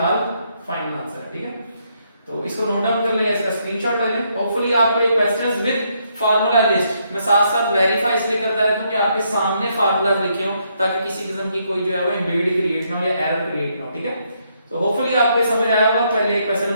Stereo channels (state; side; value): inverted; both; correlation -0.75